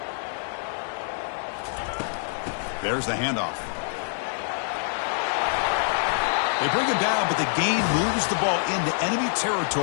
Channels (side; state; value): right; silent; digital silence